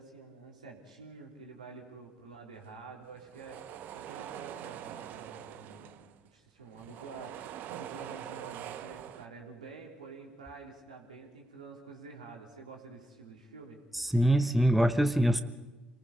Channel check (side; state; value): both; normal; correlation 0.87